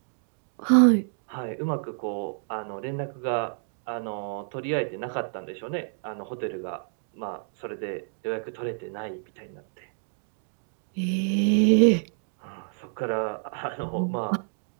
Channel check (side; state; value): left; silent; digital silence